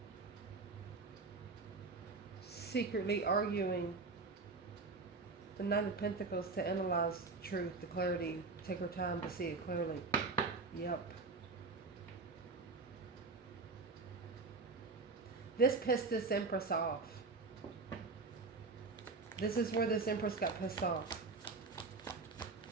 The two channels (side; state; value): left; quieter; 4.0 dB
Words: Secretly arguing. The Knight of Pentacles to analyze truth, the clarity, take her time to see it clearly. Yep. This pissed this Empress off. This is where this Empress got pissed off.